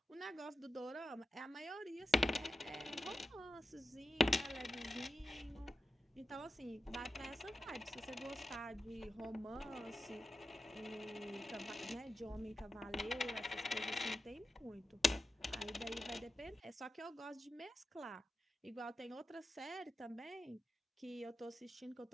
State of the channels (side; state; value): both; normal; correlation 0.91